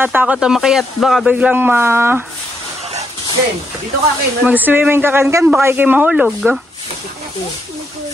na makayat. Baka biglang Dito ka, Ken. mag-swimming ka kan baka ikay mahulog.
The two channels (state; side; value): normal; both; correlation 0.78